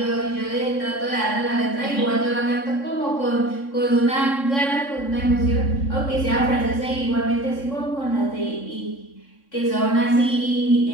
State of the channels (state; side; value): late; right; 3.6 ms